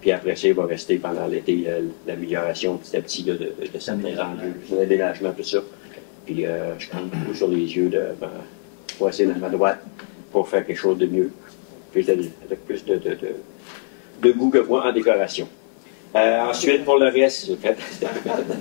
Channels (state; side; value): silent; right; 55 dB below the other